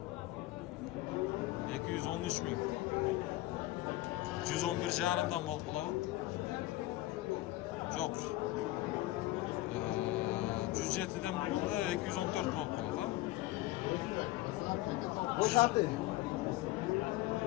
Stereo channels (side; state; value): right; quieter; 17.4 dB